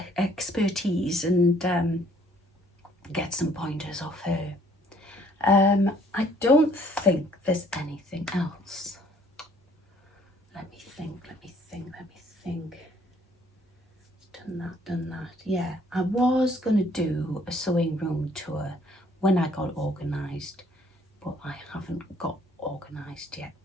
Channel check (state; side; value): normal; both; correlation 0.61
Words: expertise and get some pointers off her. I don't think there's anything else. Let me think. Done that. Yeah, I was going to do a sewing room tour when I got organised, but I haven't got organised